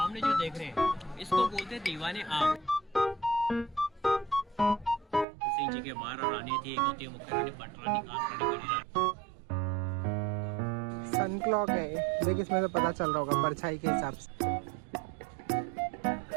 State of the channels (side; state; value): left; drops out; at 5.2 s